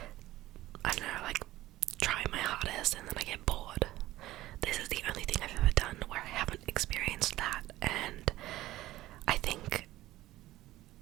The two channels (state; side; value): quieter; left; 16.1 dB